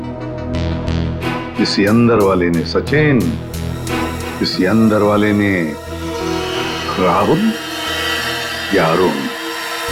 किसी अंदर वाले ने सचिन, किसी अंदर वाले ने राहुल या अरुण।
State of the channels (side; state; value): both; identical; correlation 1.00